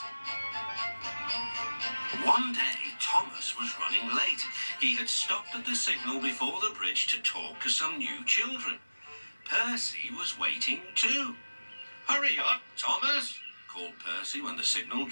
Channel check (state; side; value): inverted; both; correlation -1.00